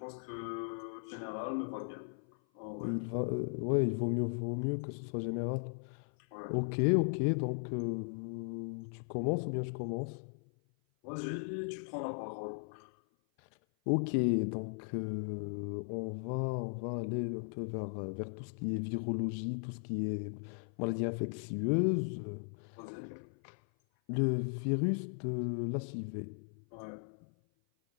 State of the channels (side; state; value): right; silent; 53 dB below the other